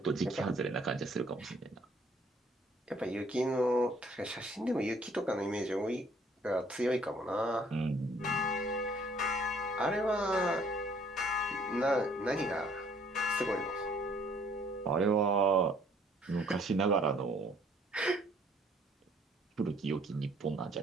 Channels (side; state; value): both; normal; correlation 0.61